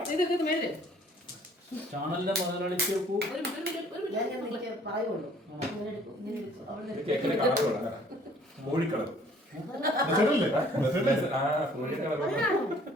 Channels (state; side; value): normal; both; correlation 0.57